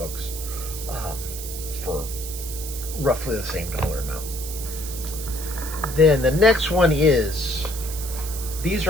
for roughly the same dollar amount. Then the next one is, these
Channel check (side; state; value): right; noise; hiss, 9 dB below the sound